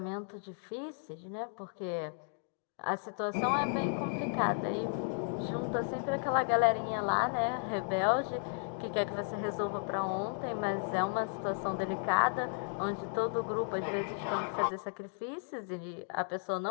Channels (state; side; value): silent; right; 55 dB below the other